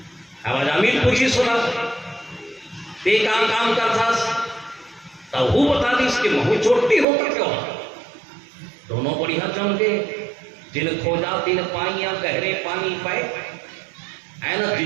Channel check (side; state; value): left; drops out; at 7.1 s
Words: अब जामिल पूछी सुना ते काम करता, तब वो बता दी इसके महू चोटती हो तो क्यों। दोनों बढ़िया जम गए, जिन खोजा तिन पाइया गहरे पानी पाए, है ना,